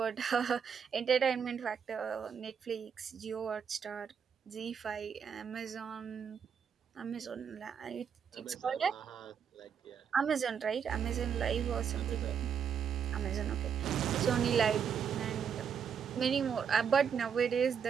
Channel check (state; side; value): quieter; left; 7.3 dB